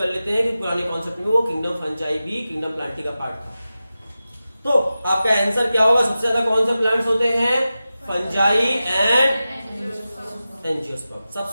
लेते हैं कि पुराने कॉन्सेप्ट में वो किंगडम फंजाई भी किंगडम प्लांटी का पार्ट था। तो आपका आंसर क्या होगा, सबसे ज्यादा कौन से प्लांट्स होते हैं, फंजाई एंड एंजियोस्पर्म,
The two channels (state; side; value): inverted; both; correlation -0.94